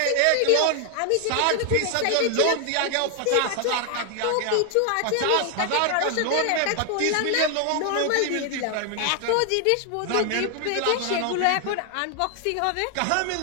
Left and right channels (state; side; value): different; both; correlation 0.00